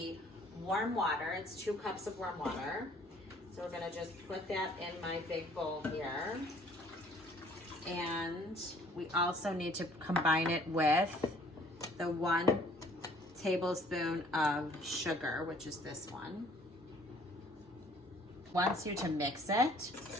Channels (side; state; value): both; normal; correlation 0.57